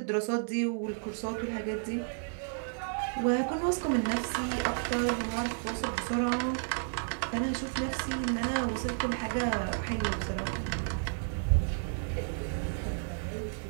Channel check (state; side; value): silent; left; digital silence